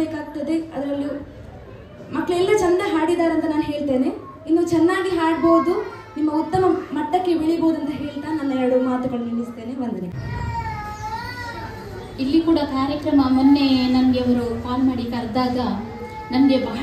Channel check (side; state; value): both; identical; correlation 1.00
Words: ಅದರಲ್ಲೂ ಮಕ್ಕಳೆಲ್ಲ ಚಂದ ಹಾಡಿದ್ದಾರೆ ಅಂತ ನಾನು ಹೇಳ್ತೇನೆ. ಇನ್ನು ಚೆನ್ನಾಗಿ ಹಾಡ್ಬೋದು, ನಿಮ್ಮ ಉತ್ತಮ ಮಟ್ಟಕ್ಕೆ ಬೆಳಿಬೋದು ಅಂತ ಹೇಳ್ತಾ ನನ್ನ 2 ಮಾತುಗಳು ನಿಲ್ಲಿಸ್ತೇನೆ. ವಂದನೆ. ಇಲ್ಲಿ ಕೂಡ ಕಾರ್ಯಕ್ರಮ ಮೊನ್ನೆ ನನಗೆ ಅವರು ಕಾಲ್ ಮಾಡಿ ಕರೆದಾಗ ನನಗೆ